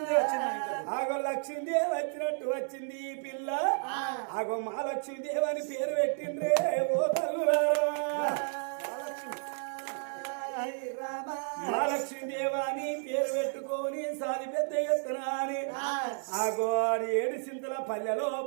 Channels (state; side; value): silent; left; digital silence